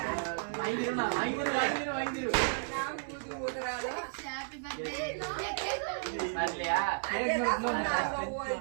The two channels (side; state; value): left; silent; 56 dB below the other